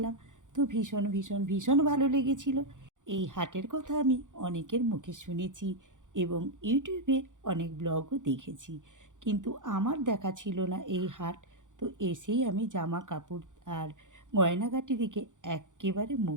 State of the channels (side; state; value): left; late; 0.87 ms